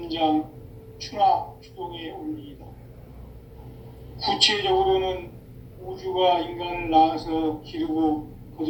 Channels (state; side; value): identical; both; correlation 1.00